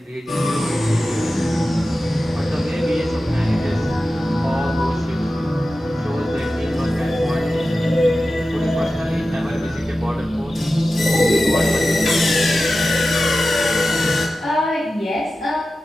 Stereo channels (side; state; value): both; normal; correlation 0.94